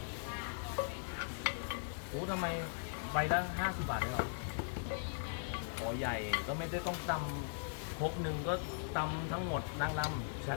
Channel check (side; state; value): right; silent; 52 dB below the other